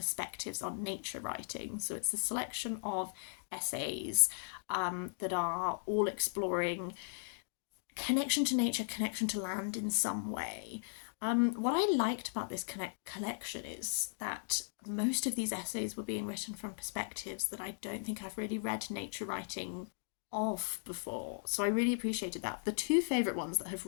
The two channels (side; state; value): right; silent; digital silence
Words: on nature writing. So it's a selection of essays that are all exploring connection to nature, connection to land in some way. What I liked about this collection is that most of these essays were being written from perspectives that I don't think I've really read nature writing of before. So I really appreciated that. The two favourite ones that have